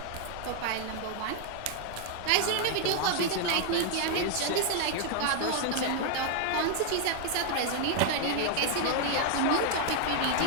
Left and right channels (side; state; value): both; different; correlation 0.00